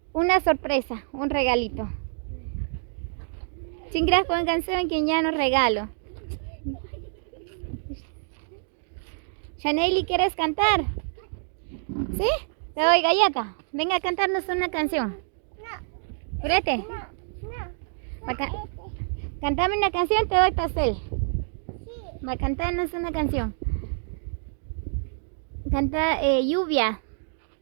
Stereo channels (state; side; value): silent; left; digital silence